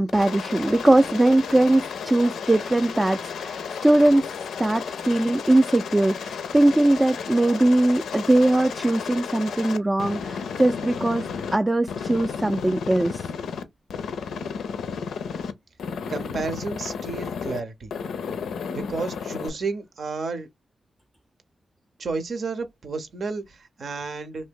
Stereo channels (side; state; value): both; normal; correlation 0.96